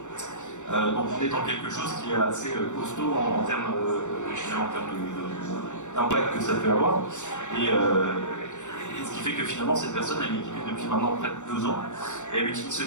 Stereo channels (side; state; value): right; late; 0.84 ms